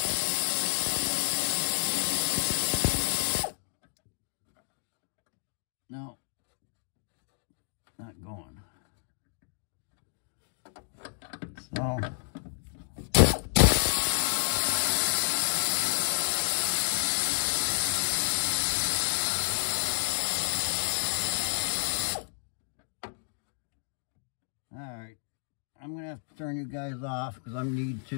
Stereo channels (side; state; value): right; silent; digital silence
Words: No, not going. So, all right, I'm gonna have to turn you guys off because I need